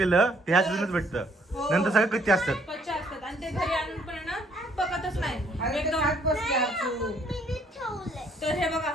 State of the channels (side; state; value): both; normal; correlation 0.65